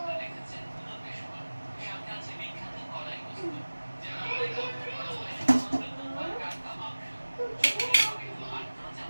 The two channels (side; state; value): both; inverted; correlation -1.00